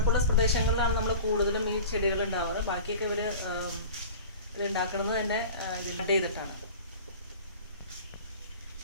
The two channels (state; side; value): inverted; both; correlation -0.38